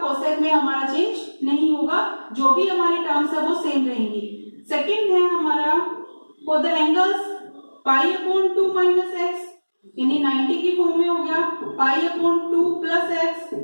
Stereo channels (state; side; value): inverted; both; correlation -1.00